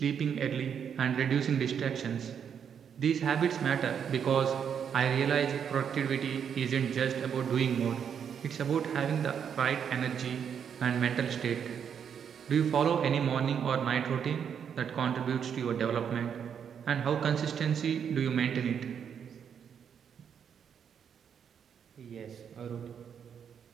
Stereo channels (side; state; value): left; quieter; 7.8 dB